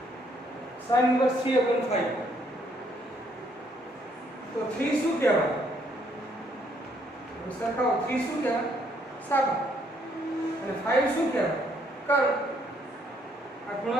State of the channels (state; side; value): normal; both; correlation 0.69